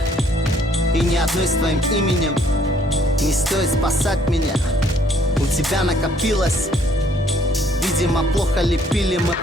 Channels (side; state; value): both; normal; correlation 0.63